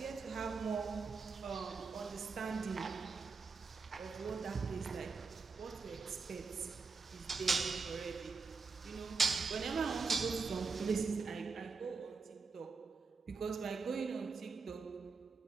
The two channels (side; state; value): left; quieter; 4.8 dB